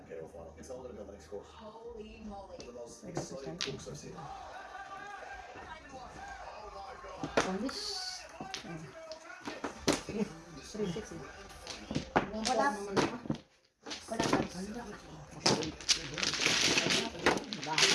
final. It's older than the next course. Holy moly. The most exciting cooks I've seen. Polish. 360. Wala naman ako. Wala ka.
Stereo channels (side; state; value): both; identical; correlation 1.00